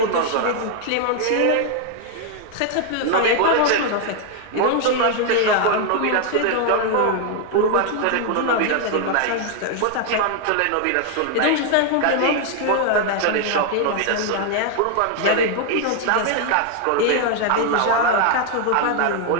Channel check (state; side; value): different; both; correlation 0.00